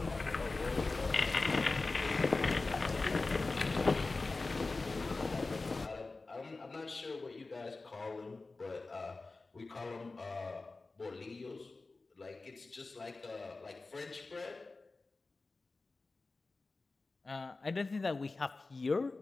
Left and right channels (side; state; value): right; quieter; 3.6 dB